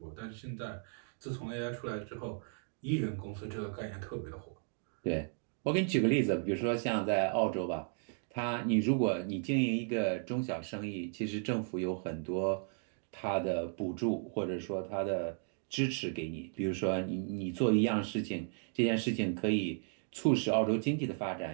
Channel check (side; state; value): left; silent; 54 dB below the other